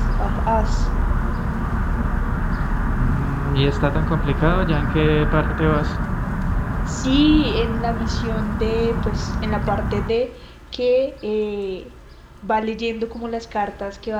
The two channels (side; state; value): both; identical; correlation 1.00